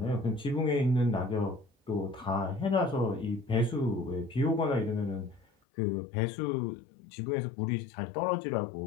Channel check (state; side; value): drops out; right; at 5.5 s